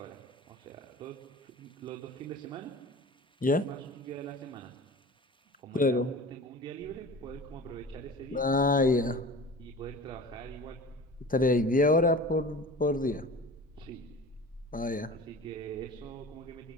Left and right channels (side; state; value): both; normal; correlation 0.38